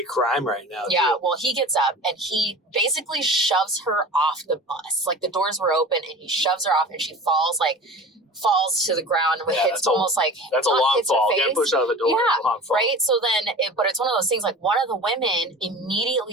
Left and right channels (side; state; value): both; normal; correlation 0.37